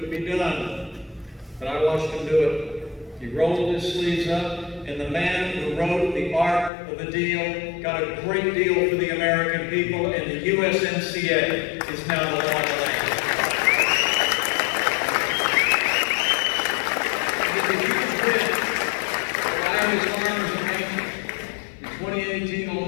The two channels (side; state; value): right; drops out; at 6.7 s